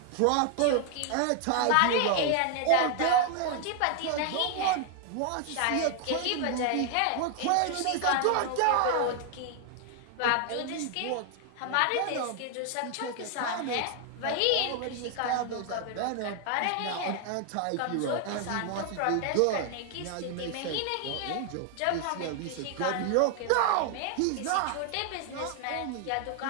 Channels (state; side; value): different; both; correlation 0.00